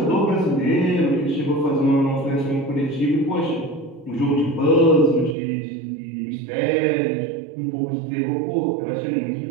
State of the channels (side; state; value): left; drops out; at 5.4 s